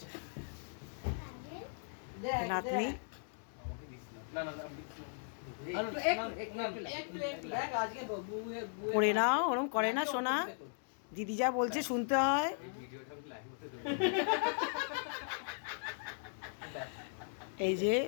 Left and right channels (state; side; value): silent; right; digital silence